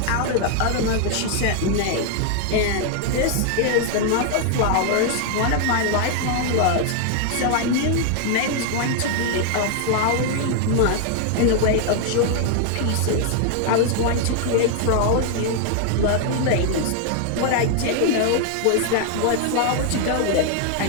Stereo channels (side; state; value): both; different; correlation 0.00